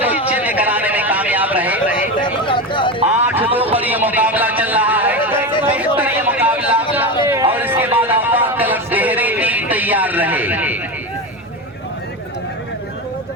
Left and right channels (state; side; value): normal; both; correlation 0.20